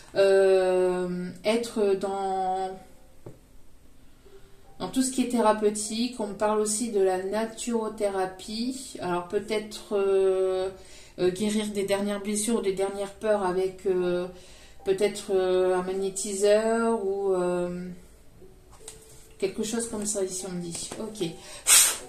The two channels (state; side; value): identical; both; correlation 1.00